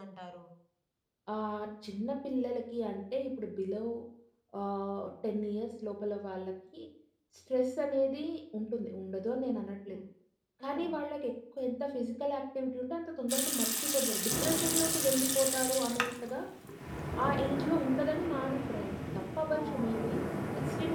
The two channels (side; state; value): both; identical; correlation 1.00